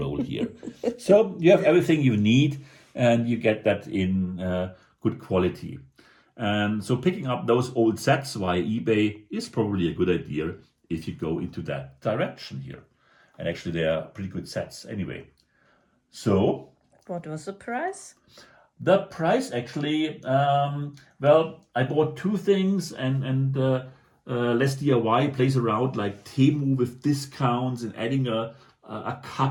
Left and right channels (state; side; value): identical; both; correlation 1.00